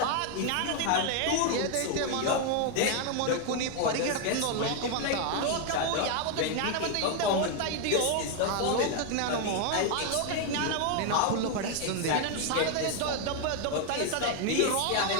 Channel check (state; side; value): different; both; correlation 0.01